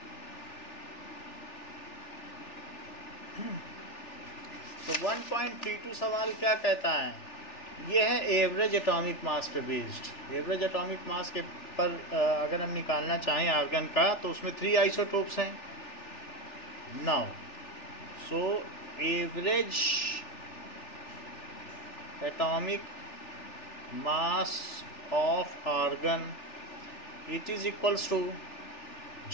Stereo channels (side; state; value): right; late; 3.4 ms